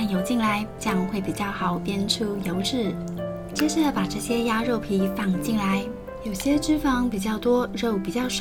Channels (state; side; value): identical; both; correlation 1.00